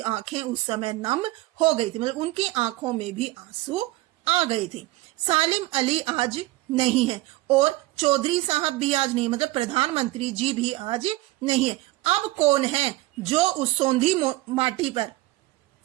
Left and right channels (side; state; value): left; quieter; 19.3 dB